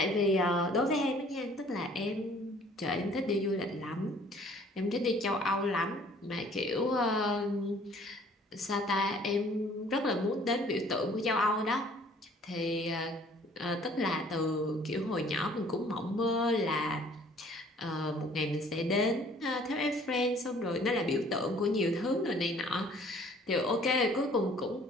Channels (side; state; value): both; normal; correlation 0.55